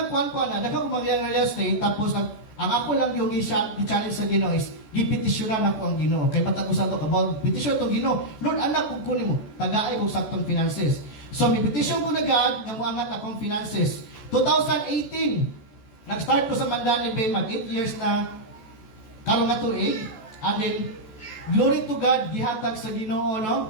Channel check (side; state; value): right; late; 14 ms